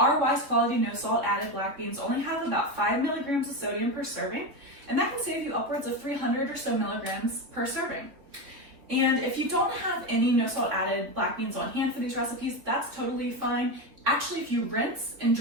Weis quality no salt added black beans only have about 5 milligrams of sodium per serving, and that can save you upwards of 300 or so milligrams per serving. And if you don't have any no salt added black beans on hand for these recipes, that's totally fine. Actually, if you rinse and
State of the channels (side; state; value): left; late; 3.7 ms